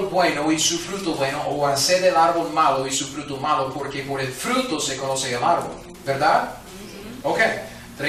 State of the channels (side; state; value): both; identical; correlation 1.00